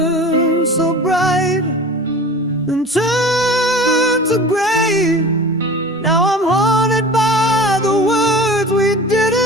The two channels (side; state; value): both; normal; correlation 0.38